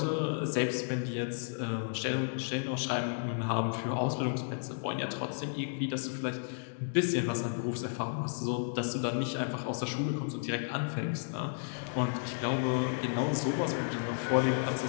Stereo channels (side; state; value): right; silent; digital silence